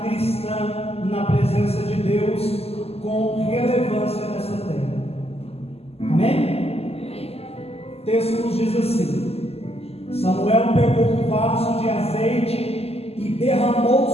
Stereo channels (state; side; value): late; right; 0.29 ms